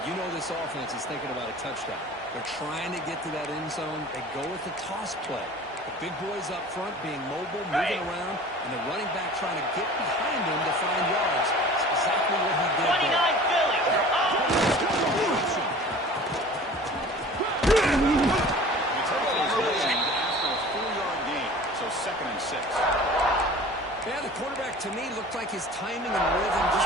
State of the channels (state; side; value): normal; both; correlation 0.43